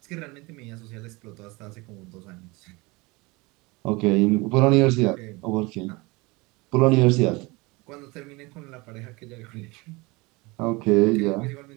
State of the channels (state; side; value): quieter; left; 24.7 dB